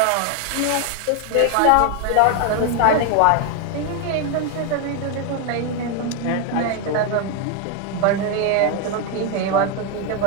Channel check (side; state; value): both; different; correlation 0.01